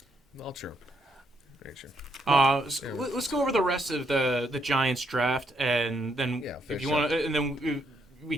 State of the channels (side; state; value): both; normal; correlation 0.75